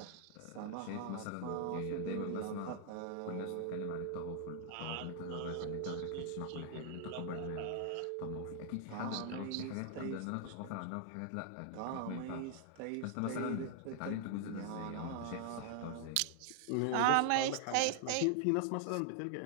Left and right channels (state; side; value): different; both; correlation 0.00